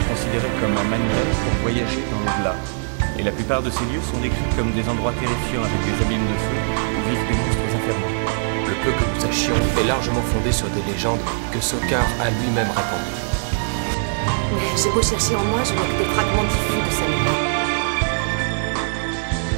considéraient comme un manuel pour voyager dans l'au-delà. Et la plupart de ces lieux sont décrits comme des endroits terrifiants avec des abîmes de feu où vivent des monstres infernaux. Le peu que nous sachions est largement fondé sur des légendes que Sokar a lui-même racontées. Mais j'ai beau chercher en moi, je n'ai que des fragments diffus de sa mémoire.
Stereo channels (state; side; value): silent; left; digital silence